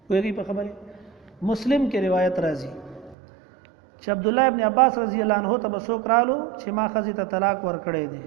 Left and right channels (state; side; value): drops out; left; at 3.2 s